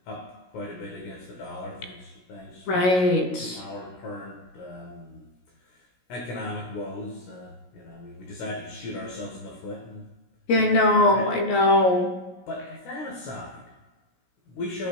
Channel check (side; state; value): right; late; 16 ms